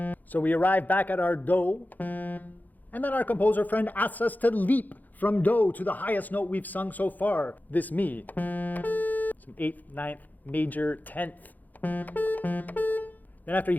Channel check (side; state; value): right; late; 0.083 ms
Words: So we arrive back at our do, and then our composer friend asks us to leap from do to the highest note we've sung so far, this mi. Some 8th, 9th, major, 10th. Then after you